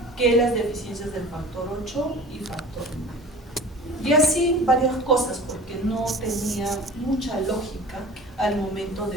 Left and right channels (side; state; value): both; normal; correlation 0.40